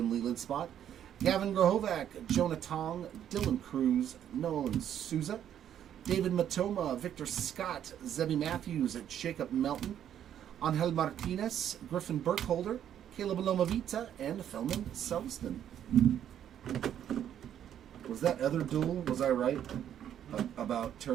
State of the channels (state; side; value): quieter; left; 10.1 dB